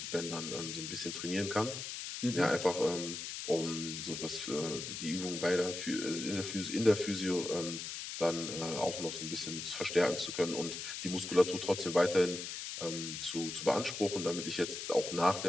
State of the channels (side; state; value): left; noise; hiss, 6 dB below the sound